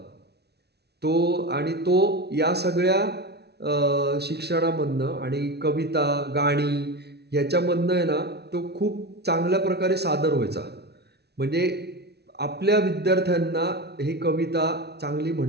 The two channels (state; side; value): late; left; 0.48 ms